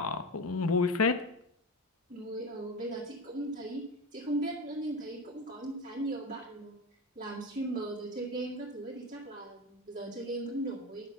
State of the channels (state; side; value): normal; both; correlation 0.22